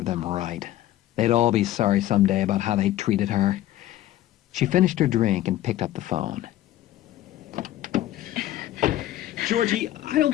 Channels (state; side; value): quieter; right; 14.1 dB